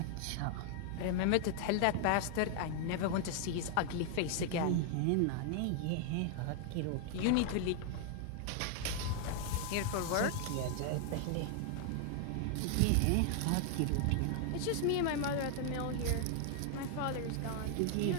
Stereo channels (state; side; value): different; both; correlation 0.00